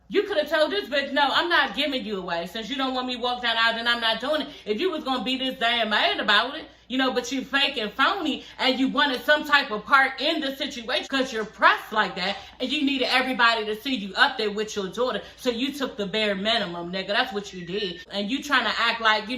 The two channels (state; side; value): identical; both; correlation 1.00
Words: You could have told this bitch, no, I'm not giving you away. Since you don't want me to walk down the aisle, then I'm not doing it. If you was going to be this damn mad about it, you know, but you fake and phony and you wanted some type of part in the situation because you're pressed like that and you needed everybody to see you up there with your daughter. So you took the bare minimum, nigga. That's what you did. And you trying to act like, you